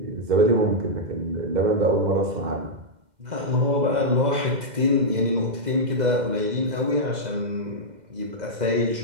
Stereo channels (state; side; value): late; left; 2.0 ms